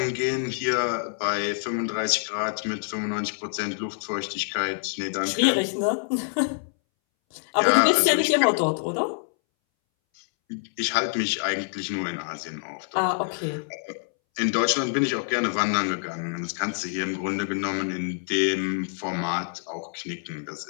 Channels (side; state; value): right; silent; 61 dB below the other